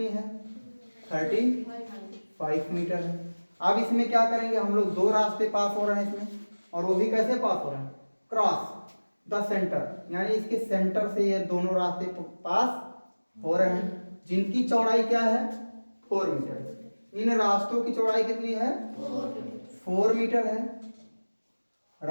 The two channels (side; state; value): both; inverted; correlation -1.00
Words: है 35 मीटर है। अब इसमें क्या करेंगे, हम लोग दो रास्ते पास हो रहे हैं इसमें, और वो भी कैसे पास हो रहे हैं, क्रॉस द सेंटर, यानी इसके सेंटर से ये दोनों रास्ते पास हो रहे हैं, जिनकी चौड़ाई क्या है 4 मीटर। इन रास्तों की चौड़ाई कितनी है 4 मीटर है।